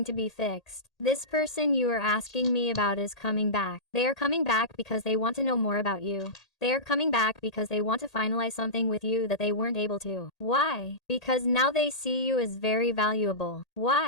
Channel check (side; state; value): right; late; 1.8 ms